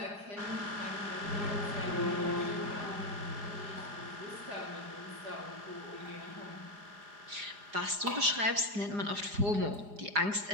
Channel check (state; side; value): late; left; 4.9 ms